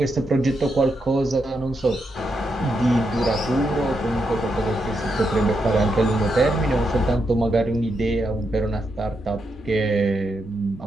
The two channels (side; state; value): both; normal; correlation 0.82